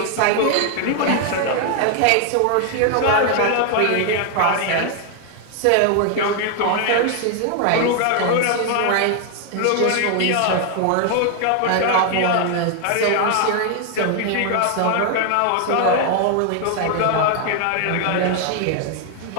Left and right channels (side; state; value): both; different; correlation 0.00